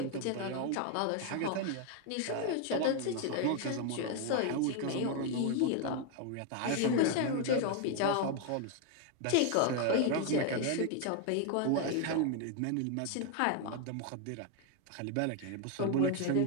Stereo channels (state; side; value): different; both; correlation 0.01